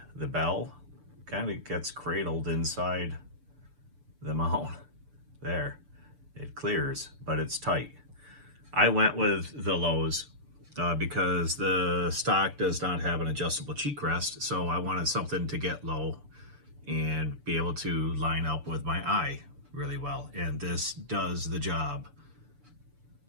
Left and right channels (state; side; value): late; left; 6.9 ms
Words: the bell kind of gets cradled inside the mount. There, it clears, but it's tight. I went with the lows because the stock does not have an adjustable cheek rest, so I wanted something to get low and be able to line up with my eye really well. And this does the job.